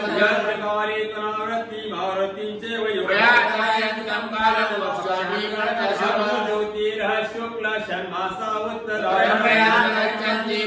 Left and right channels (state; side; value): identical; both; correlation 1.00